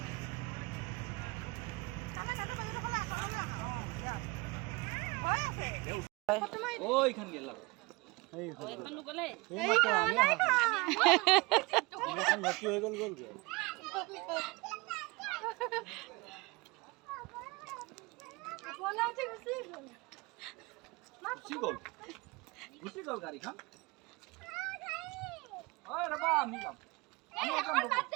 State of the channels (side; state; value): left; quieter; 25.0 dB